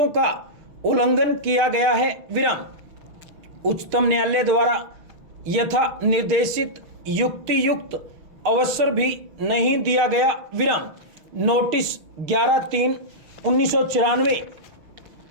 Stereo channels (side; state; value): left; late; 6.2 ms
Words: का उल्लंघन किया गया है। विराम। उच्चतम न्यायालय द्वारा यथा निर्देशित युक्तियुक्त अवसर भी नहीं दिया गया। विराम। नोटिस 11/3/1994